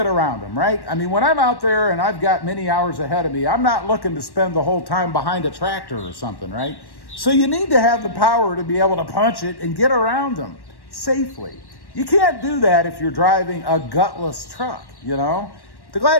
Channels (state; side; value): late; right; 1.1 ms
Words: around them, right? I mean, when I'm out there and I've got many hours ahead of me, I'm not looking to spend the whole time behind a tractor or something, right? So you need to have the power to be able to punch it and get around them safely. You can't do that if you're driving a gutless truck, you know? The